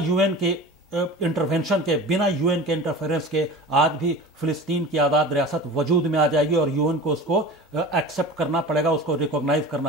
के इंटरवेंशन के, बिना यूएन के इंटरफेरेंस के आज भी फिलिस्तीन की आज़ाद रियासत वजूद में आ जाएगी और यूएन को उसको एक्सेप्ट करना पड़ेगा, उसको रिकॉग्नाइज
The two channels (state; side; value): normal; both; correlation 0.36